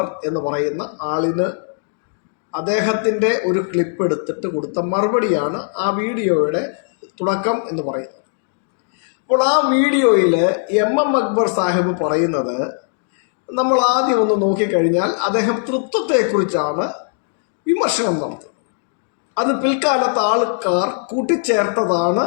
എന്ന് പറയുന്ന ആളിന് അദ്ദേഹത്തിൻ്റെ ഒരു ക്ലിപ്പ് എടുത്തിട്ട് കൊടുത്ത മറുപടിയാണ് ആ വീഡിയോയുടെ തുടക്കം എന്ന് പറയുന്നത്. അപ്പോൾ ആ വീഡിയോയിൽ MM അക്ബർ സാഹിബ് പറയുന്നത് നമ്മൾ ആദ്യം ഒന്ന് നോക്കിക്കഴിഞ്ഞാൽ അദ്ദേഹം തൃത്വത്തെക്കുറിച്ചാണ് വിമർശനം നടത്തുന്നത്. അത് പിൽക്കാലത്ത് ആൾക്കാർ കൂട്ടിച്ചേർത്തതാണ്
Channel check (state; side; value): silent; right; 66 dB below the other